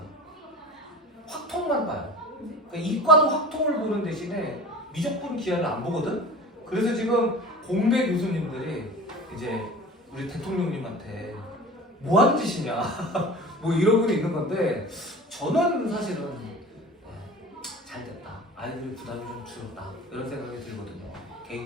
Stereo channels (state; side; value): normal; both; correlation 0.39